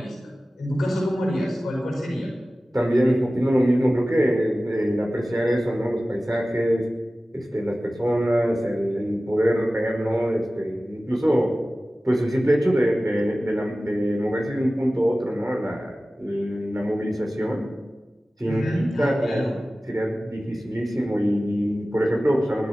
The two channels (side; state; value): both; normal; correlation 0.96